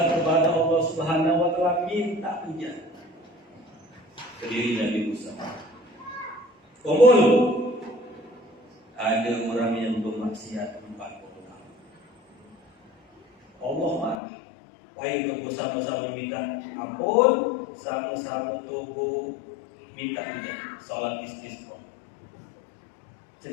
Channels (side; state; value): right; drops out; at 14.2 s